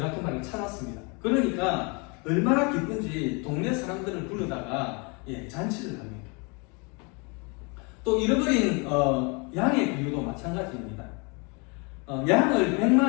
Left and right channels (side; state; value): right; quieter; 31.7 dB